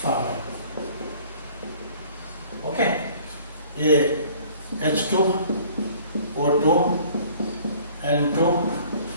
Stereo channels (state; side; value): inverted; both; correlation -0.52